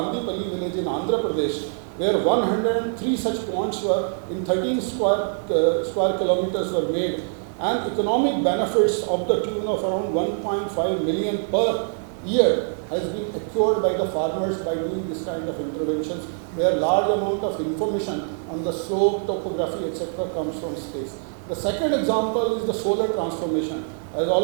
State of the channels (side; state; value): left; silent; digital silence